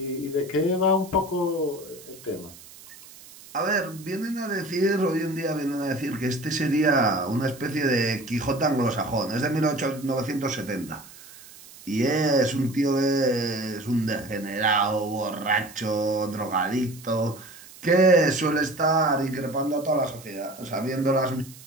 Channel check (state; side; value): noise; right; hiss, 20 dB below the sound